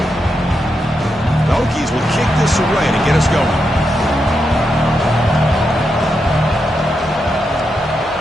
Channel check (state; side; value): normal; both; correlation 0.85